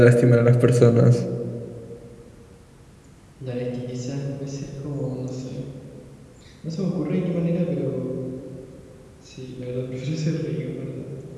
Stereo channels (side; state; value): both; identical; correlation 1.00